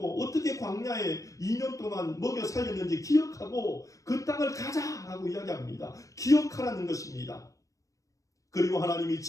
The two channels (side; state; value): right; late; 0.16 ms